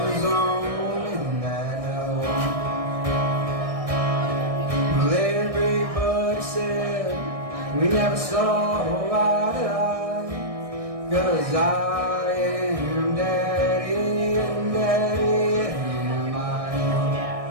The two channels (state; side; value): late; left; 1.6 ms